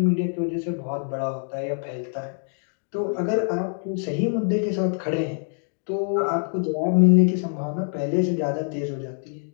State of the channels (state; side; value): silent; right; digital silence